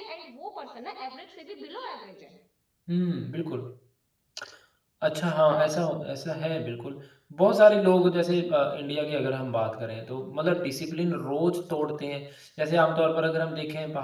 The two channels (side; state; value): both; identical; correlation 1.00